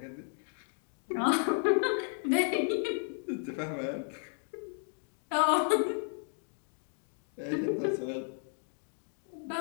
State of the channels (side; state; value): right; silent; 55 dB below the other